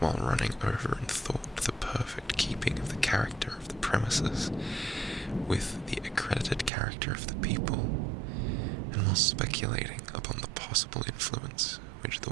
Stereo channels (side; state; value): left; drops out; at 6.7 s